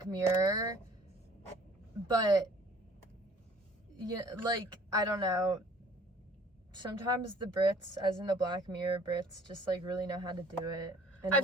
Mirror, but yeah, like, I don't know. Sometimes the Brits, as in the Black Mirror Brits, just like really know how to do it in a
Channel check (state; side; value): normal; both; correlation 0.53